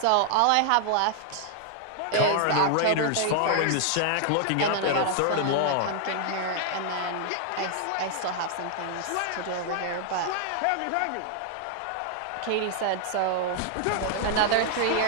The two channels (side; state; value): both; different; correlation 0.00